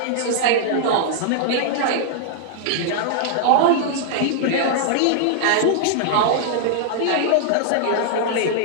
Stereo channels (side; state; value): both; different; correlation -0.01